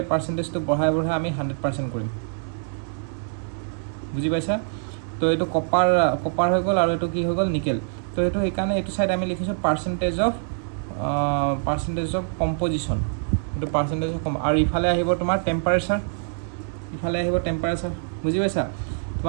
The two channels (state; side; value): silent; left; 62 dB below the other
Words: পাৰ্চেন্টেজটো বঢ়াই আমি 100% কৰিম বুজি পাইছা তো এইটো কপাৰ হৈ গ'ল আৰু এইটো কি হৈ গ'ল নিকেল তো এইটো সেইকাৰণে এইটো সাইড আমি লিখিছোঁ পাৰ্চেন্টেজ অফ কম্পজিশ্যন এইটো পাৰ্চেন্টেজ অফ আৰু ইফালে আহিব তোমাৰ টেম্পাৰেচাৰ বুজি পাইছা